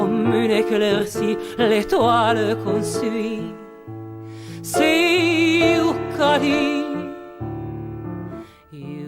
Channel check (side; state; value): both; identical; correlation 1.00